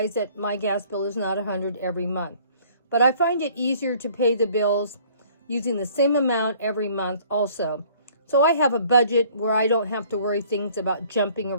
that my gas bill is not 100 every month. But I find it easier to pay the bills using the same amount every month also. So I have a budget where I don't have to worry things about jumping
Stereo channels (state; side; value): inverted; both; correlation -0.55